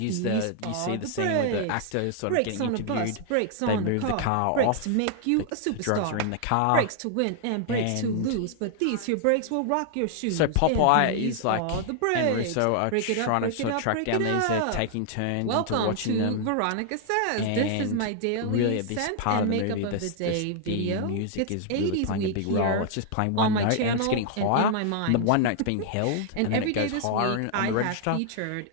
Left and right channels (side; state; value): both; different; correlation 0.00